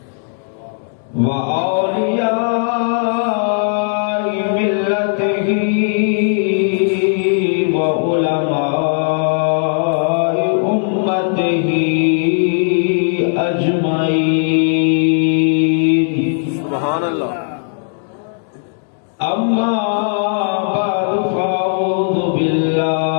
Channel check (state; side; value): silent; right; 60 dB below the other